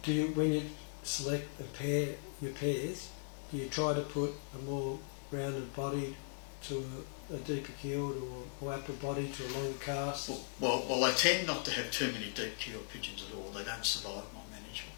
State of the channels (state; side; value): silent; right; 52 dB below the other